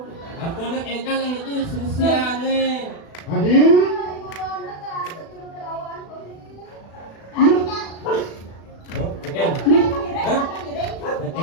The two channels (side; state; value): right; late; 36 ms